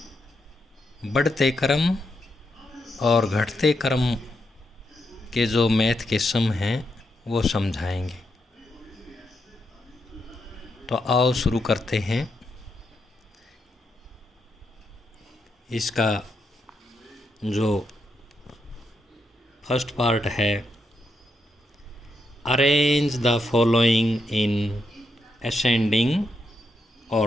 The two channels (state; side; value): normal; both; correlation 0.82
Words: बढ़ते क्रम और घटते क्रम के जो मैथ के सम हैं वो समझाएंगे। तो आओ शुरू करते हैं। इसका जो फर्स्ट पार्ट है, arrange the following in ascending